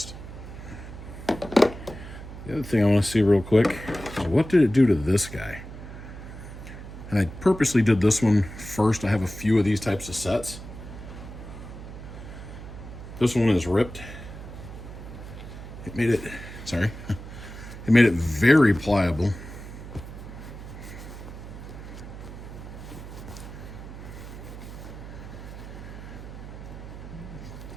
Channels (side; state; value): right; noise; hum, 12 dB below the sound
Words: The other thing I want to see real quick is what did it do to this guy? And I purposely did this one first. I have a few of these types of sets. This one is ripped. It made it, sorry, it made it very pliable.